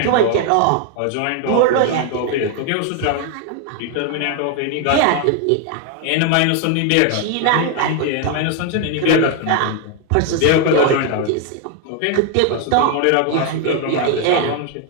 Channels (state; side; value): different; both; correlation 0.00